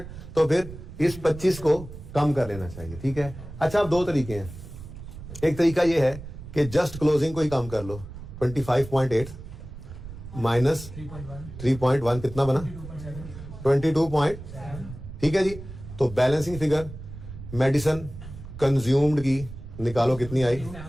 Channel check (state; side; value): noise; right; rumble, 13 dB below the sound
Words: तो फिर इस 25 को कम कर लेना चाहिए, ठीक है। अच्छा अब दो तरीके हैं, एक तरीका ये है कि जस्ट क्लोजिंग को ही कम कर लो, 25.8 माइनस 3.1 कितना बना 22. ठीक है जी। तो बैलेंसिंग फिगर मेडिसिन कंज्यूम्ड की निकालो, कितनी आई